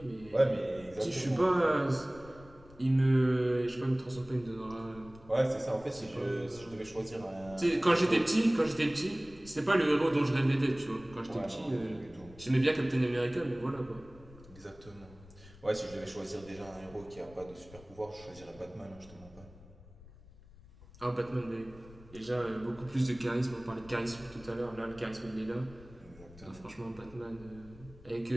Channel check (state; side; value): noise; left; rumble, 21 dB below the sound